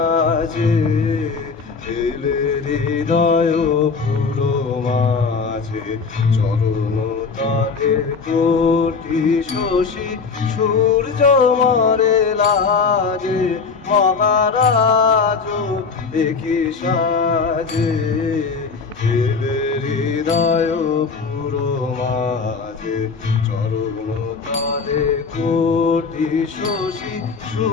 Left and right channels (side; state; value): right; quieter; 5.0 dB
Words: এলে হৃদয় পুরো মাঝে চরণ তলে কোটি শশী সূর্য মরে লাজে মহারাজ দেখি সাজে এলে হৃদয় পুরো মাঝে চরণ তলে কোটি শশী